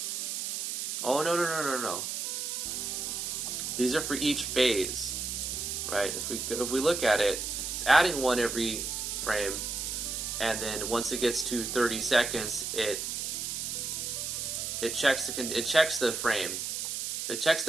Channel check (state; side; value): noise; right; hiss, 3 dB below the sound